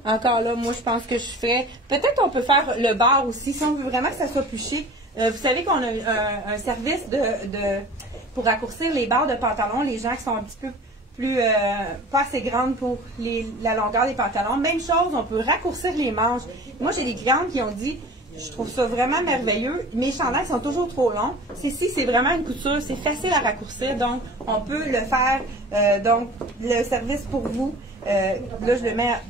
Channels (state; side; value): normal; both; correlation 0.42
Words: Encore là, moi, je pense que je ferais... Peut-être on peut faire le bord aussi, si on veut vraiment que ça soit plus chic. Vous savez qu'on a un service pour raccourcir les barres de pantalon, les gens qui sont un petit peu plus, pas assez grandes pour la longueur des pantalons. Même chose, on peut raccourcir les manches. Moi, j'ai des clientes qui ont dit, je trouve ça vraiment merveilleux, mes chandails sont toujours trop longs. C'est vraiment une couture, c'est facile à raccourcir, donc on peut le faire, donc le service pour vous. Là, je le mets